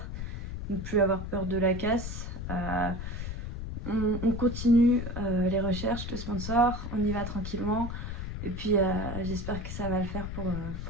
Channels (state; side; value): noise; left; rumble, 5 dB below the sound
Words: Ne plus avoir peur de la casse. On continue les recherches de sponsors, on y va tranquillement et puis j'espère que ça va le faire